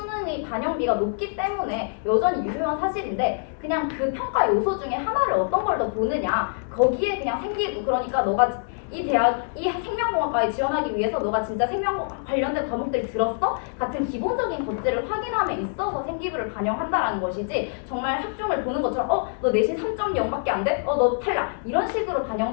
반영비가 높기 때문에 여전히 유효한 사실인데 그냥 그 평가 요소 중에 하나를 어떤 걸 더 보느냐 거기에 그냥 생기고 그러니까 너가 이 대학 이 생명공학과에 지원하기 위해서 너가 진짜 생명공학 관련된 과목들 들었어? 같은 기본적인 것들을 확인함에 있어서 생기부를 반영한다라는 것이지 정말 학종을 보는 것처럼 너 내신 3.0밖에 안 돼? 너 탈락 이런 식으로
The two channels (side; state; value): right; silent; digital silence